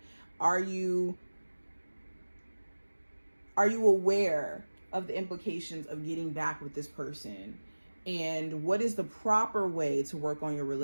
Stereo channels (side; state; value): both; inverted; correlation -1.00